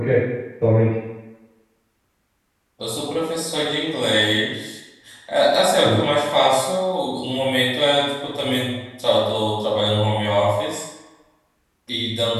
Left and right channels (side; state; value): both; identical; correlation 1.00